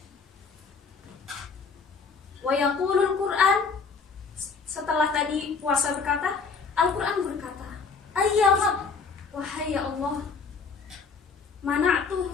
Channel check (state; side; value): quieter; right; 5.0 dB